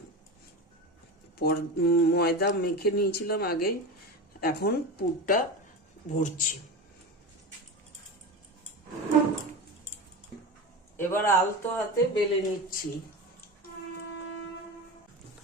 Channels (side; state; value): both; normal; correlation 0.24